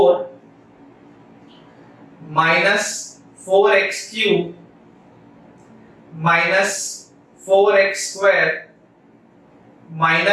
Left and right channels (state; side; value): identical; both; correlation 1.00